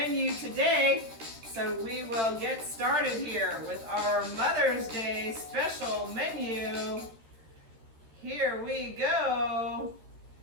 today. So we will get started here with our Mother's Day special menu. Here we go.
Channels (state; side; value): late; left; 13 ms